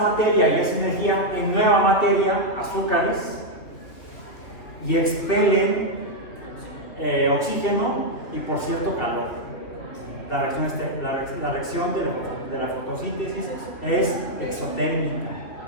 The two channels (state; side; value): late; right; 3.0 ms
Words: y esa energía en nueva materia, azúcares, y expelen oxígeno y, por cierto, calor. La reacción de la fotosíntesis es exotérmica.